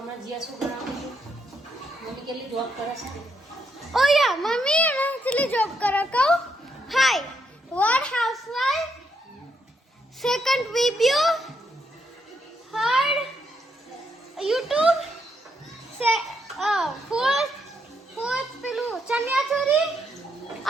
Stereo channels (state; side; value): normal; both; correlation 0.77